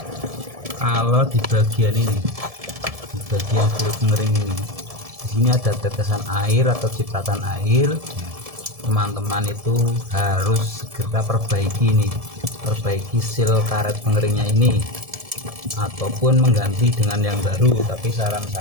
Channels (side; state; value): left; late; 1.7 ms